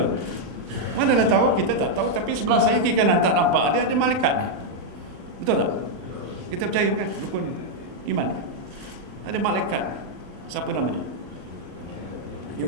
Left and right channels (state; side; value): late; left; 40 ms